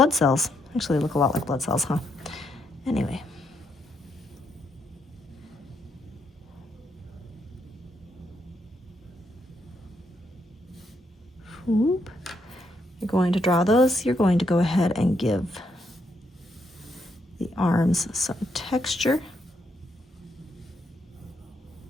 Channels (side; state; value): both; normal; correlation 0.77